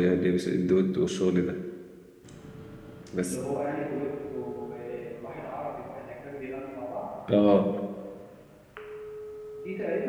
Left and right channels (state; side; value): identical; both; correlation 1.00